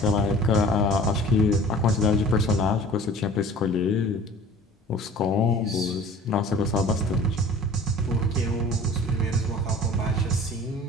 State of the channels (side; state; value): both; normal; correlation 0.46